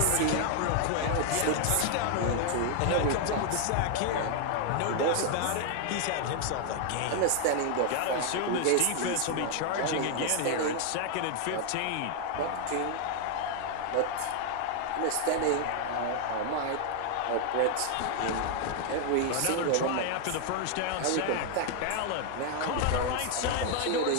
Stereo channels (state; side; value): different; both; correlation 0.00